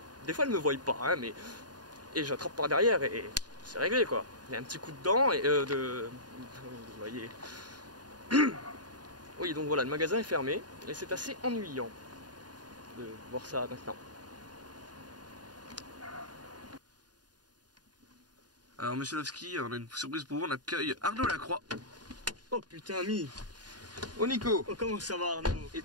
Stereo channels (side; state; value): left; late; 0.69 ms